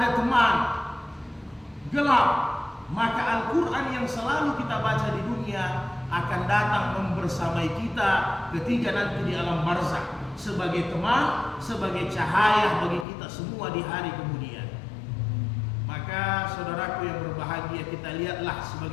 teman, gelap. Maka Al-Quran yang selalu kita baca di dunia akan datang membersamai kita ketika nanti di alam barzakh, sebagai teman, sebagai cahaya bagi kita semua di hari kemudian. Maka saudaraku yang berbahagia, kita lihatlah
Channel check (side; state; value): right; drops out; at 13.1 s